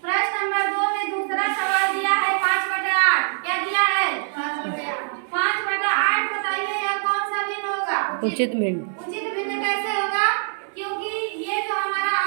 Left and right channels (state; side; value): silent; left; digital silence